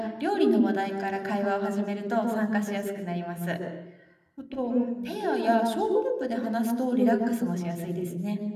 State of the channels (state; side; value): identical; both; correlation 1.00